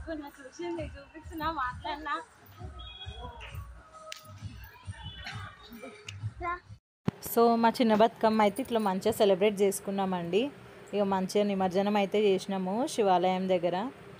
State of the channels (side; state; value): both; identical; correlation 1.00